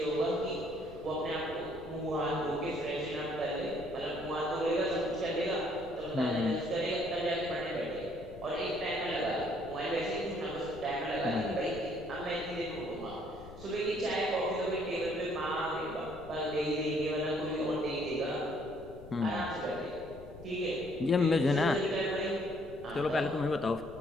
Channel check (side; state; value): left; noise; rumble, 16 dB below the sound